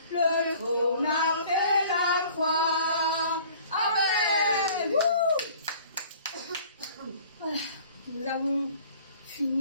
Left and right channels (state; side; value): inverted; both; correlation -0.50